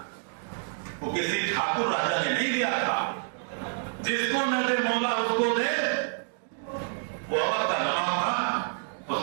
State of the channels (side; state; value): left; silent; 59 dB below the other